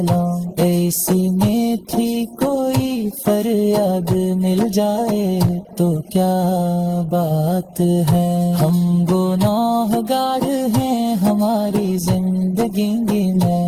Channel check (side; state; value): both; identical; correlation 1.00